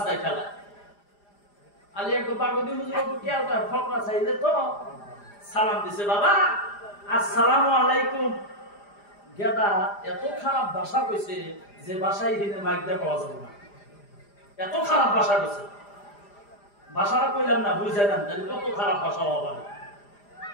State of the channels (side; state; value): right; late; 4.9 ms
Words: খেলা। আলী একবার পার্বতী হুজুর খেয়ালটা ফকরা চাইলে তো সালাম দিছে, বাবা আসসালামু আলাইকুম। গেদা এত খারাপ ভাষা কইছে যে ভাষায় হিনে মাইক দিয়ে পাওয়া যাবে না, এত খারাপ ভাষা কইছে। ভাষাটা কইলাম না, বুঝে নেন তাহলে কত খারাপ ভাষা হওয়া পারে।